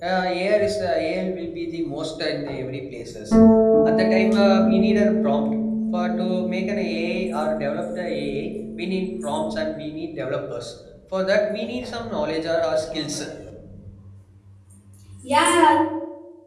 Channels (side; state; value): both; identical; correlation 1.00